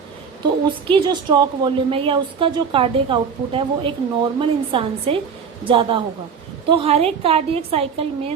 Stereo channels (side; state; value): left; quieter; 6.4 dB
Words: तो उसकी जो स्ट्रोक वॉल्यूम है या उसका जो कार्डियक आउटपुट है वो एक नॉर्मल इंसान से ज्यादा होगा। तो हर एक कार्डियक साइकिल